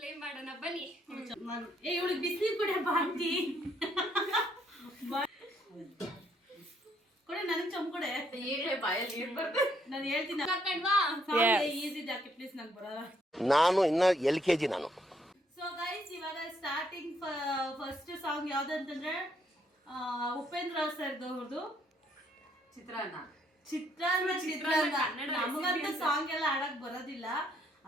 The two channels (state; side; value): normal; both; correlation 0.71